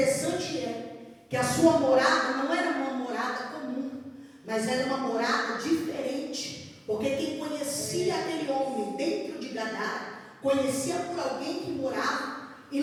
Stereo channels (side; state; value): both; identical; correlation 1.00